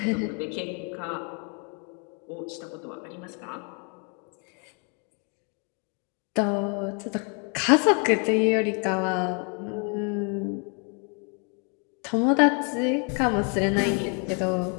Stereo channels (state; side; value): quieter; right; 37.7 dB